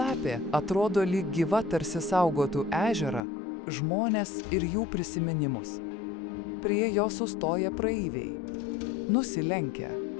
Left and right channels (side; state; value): right; drops out; at 3.2 s